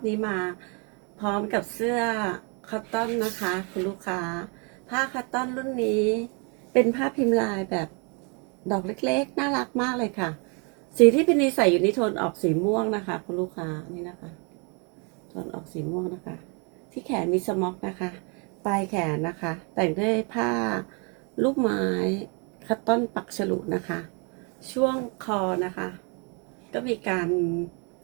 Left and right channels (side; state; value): left; quieter; 34.5 dB